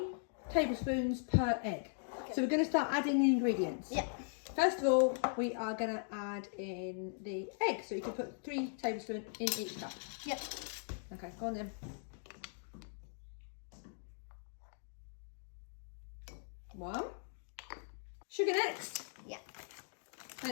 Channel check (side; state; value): right; silent; digital silence